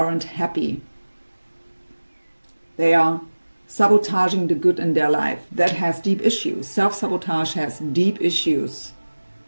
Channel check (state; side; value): inverted; both; correlation -1.00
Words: happy. They are sabotaging the good in their life. That has deep issues. Self-sabotage has deep issues.